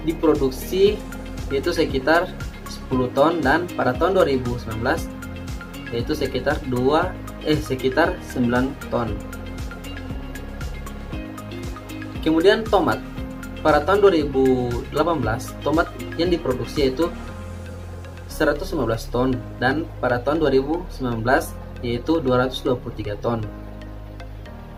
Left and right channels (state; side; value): identical; both; correlation 1.00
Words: diproduksi yaitu sekitar 10 ton dan pada tahun 2019 yaitu sekitar 9 ton. Kemudian tomat. Pada tahun 2018 tomat yang diproduksi yaitu 115 ton dan pada tahun 2019 yaitu 223 ton.